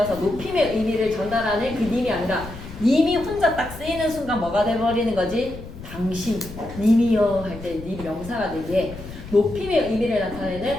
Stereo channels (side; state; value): left; noise; rumble, 13 dB below the sound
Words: 높임의 의미를 전달하는 그 님이 아니라 님이 혼자 딱 쓰이는 순간 뭐가 돼버리는 거지? 당신, 님이여 할 때 님 명사가 되기에 높임의 의미를 나타내는